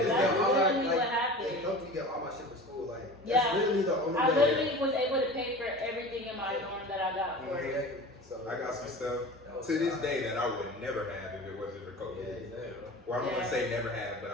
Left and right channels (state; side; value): normal; both; correlation 0.36